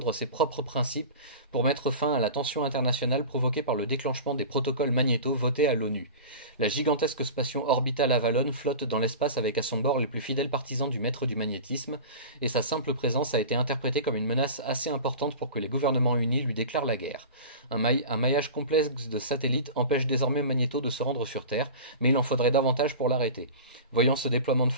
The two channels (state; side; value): inverted; both; correlation -0.34